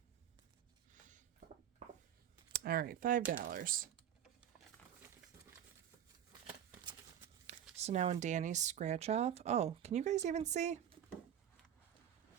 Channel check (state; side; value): quieter; left; 9.9 dB